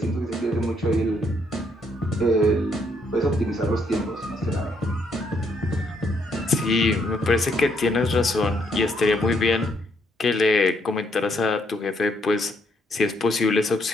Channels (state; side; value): normal; both; correlation 0.72